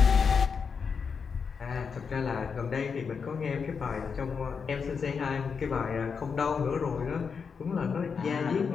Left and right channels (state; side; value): quieter; right; 5.9 dB